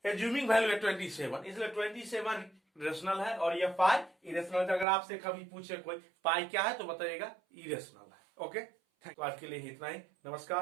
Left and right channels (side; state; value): left; drops out; at 4.9 s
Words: एज्यूमिंग वैल्यू है 27, इसलिए 27 रेशनल है और यह पाई इरेशनल। अगर आपसे कभी पूछे कोई पाई क्या है तो बताइएगा इरेशनल है। Okay, thank you. आज के लिए इतना ही,